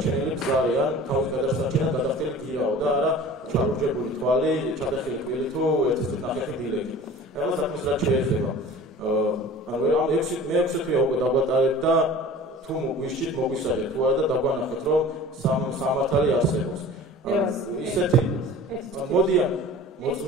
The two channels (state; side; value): normal; both; correlation 0.42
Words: გზარი ან თავის გადასარჩენად გადახდილი გირაო და არა ჩარუჯებული თვალი, ჩადახილი კბილი თუ ერთი ნახევარი დილეგი. Ela sabe que შეიძლება. Agora მე 6 თვეა უკვე დაგვატარეთ და თუ მოგვიშით მოგვისაჯეთ თუ არა და დაგვანახეთ რომ სამართალი არსებობს. ისეთი მოდიან